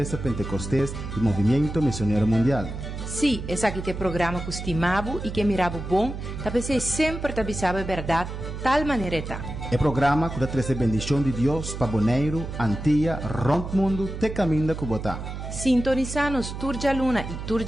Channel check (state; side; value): noise; right; hum, 7 dB below the sound